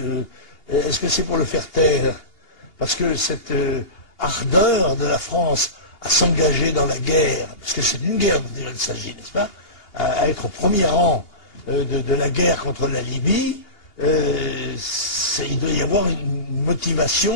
Est-ce que c'est pour le faire taire? Parce que cette ardeur de la France à s'engager dans la guerre, parce que c'est d'une guerre dont il s'agit, n'est-ce pas, à être au premier rang de la guerre contre la Libye, il doit y avoir une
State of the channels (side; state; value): right; late; 2.8 ms